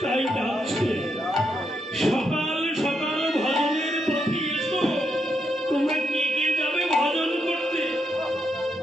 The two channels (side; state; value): both; normal; correlation 0.80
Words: তাই ডাকছে, সকাল সকাল ভজনের পথে এসো। তোমরা কে কে যাবে ভজন করতে?